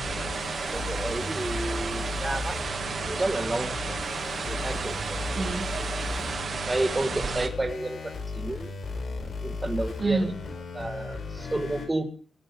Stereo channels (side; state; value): both; normal; correlation 0.89